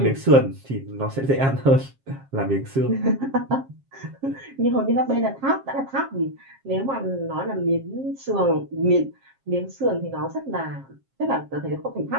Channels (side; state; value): left; late; 7.4 ms